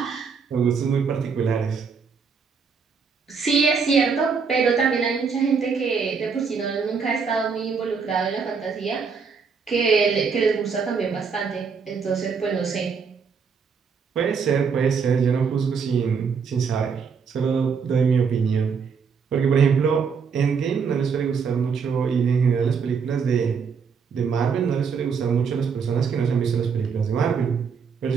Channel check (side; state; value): left; quieter; 5.8 dB